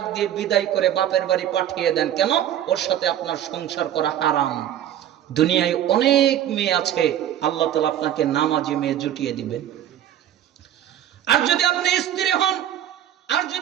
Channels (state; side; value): quieter; left; 11.2 dB